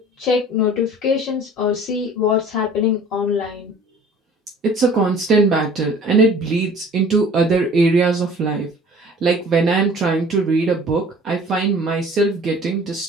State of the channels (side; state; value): both; normal; correlation 0.48